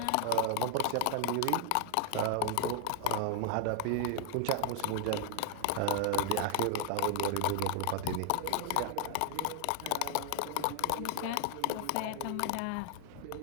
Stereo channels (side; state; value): both; different; correlation 0.00